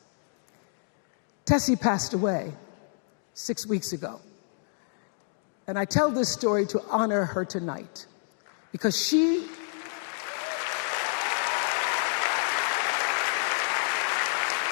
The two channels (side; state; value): right; silent; digital silence